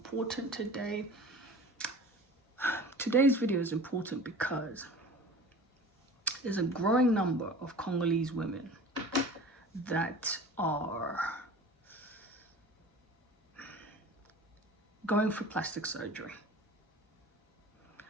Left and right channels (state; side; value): normal; both; correlation 0.40